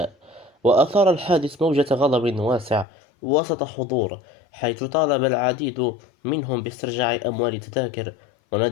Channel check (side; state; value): right; drops out; at 2.9 s